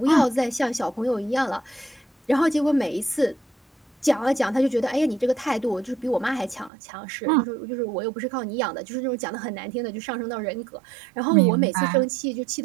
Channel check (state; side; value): drops out; left; at 6.7 s